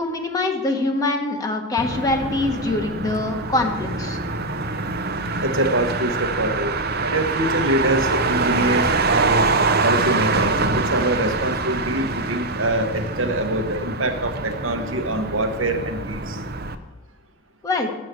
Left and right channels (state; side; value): normal; both; correlation 0.04